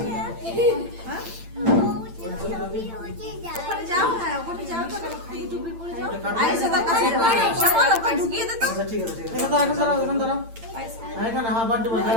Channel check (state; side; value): late; left; 8.9 ms